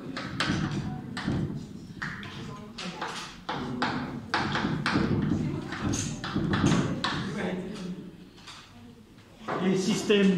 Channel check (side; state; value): both; identical; correlation 1.00